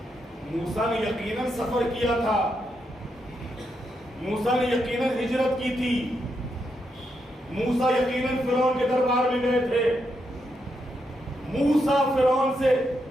موسیٰ نے یقیناً سفر کیا تھا، موسیٰ نے یقیناً ہجرت کی تھی، موسیٰ یقیناً فرعون کے دربار میں گئے تھے. موسیٰ فرعون سے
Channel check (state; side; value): normal; both; correlation 0.81